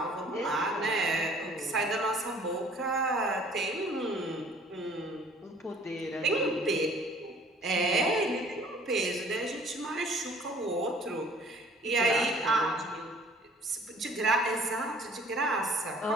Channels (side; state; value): both; normal; correlation 0.54